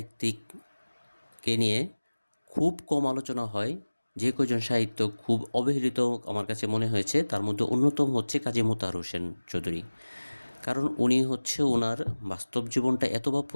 নিয়ে খুব কম আলোচনা হয়, যে কয়জন সাহিত্য খুব অবহেলিত আমার কাছে মনে হয়েছে, তার মধ্যে অন্যতম হচ্ছে কাজী মোতাহার হোসেন চৌধুরী। কারণ উনি হচ্ছে ওনার বাস্তব জীবনটা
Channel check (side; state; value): both; inverted; correlation -1.00